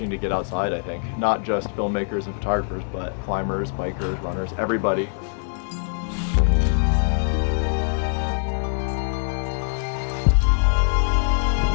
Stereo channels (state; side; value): silent; right; 63 dB below the other